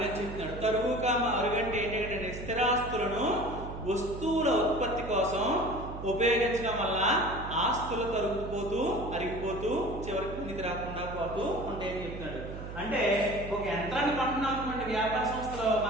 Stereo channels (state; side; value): noise; right; hum, 9 dB below the sound